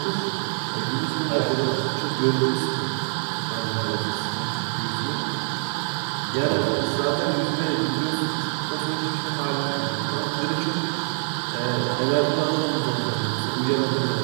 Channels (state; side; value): silent; left; digital silence